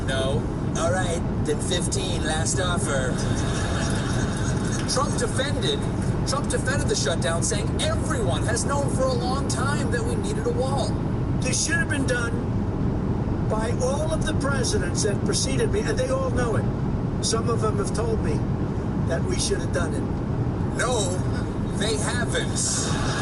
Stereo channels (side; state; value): both; identical; correlation 1.00